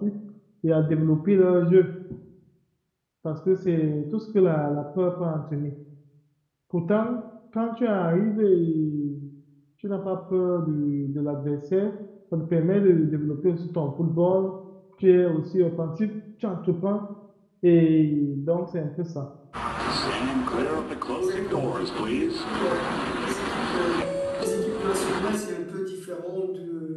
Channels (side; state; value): both; identical; correlation 1.00